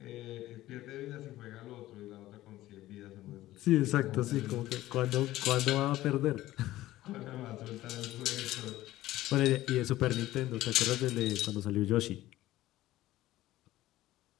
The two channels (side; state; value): right; quieter; 15.7 dB